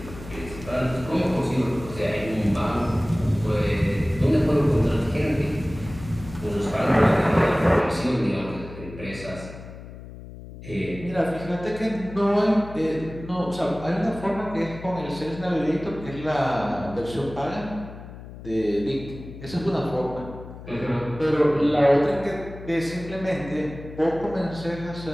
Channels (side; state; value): left; noise; hum, 14 dB below the sound